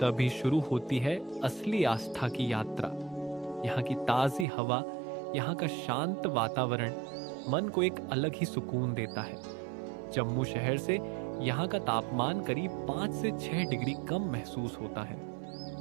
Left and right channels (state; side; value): drops out; left; at 4.5 s